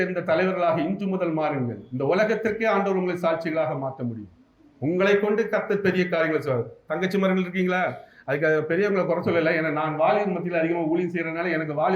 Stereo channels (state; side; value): identical; both; correlation 1.00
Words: தலைவர்களாக இன்று முதல் மாறுங்கள். இந்த உலகத்திற்கே ஆண்டவர் உங்களை சாட்சிகளாக மாற்ற முடியும். உங்களை கொண்டு கர்த்தர் பெரிய காரியங்களை சொல்றாரு. தங்கச்சி மரங்கள் இருக்கீங்களா? அதுக்கு பெரியவங்களை குறை சொல்லலை. ஏன்னா நான் வாலிபர் மத்தியில் அதிகமாக ஊழியம் செய்யறதுனால எனக்கு